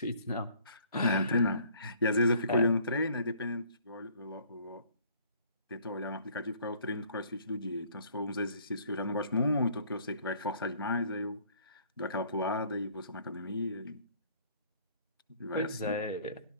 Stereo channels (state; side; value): inverted; both; correlation -0.58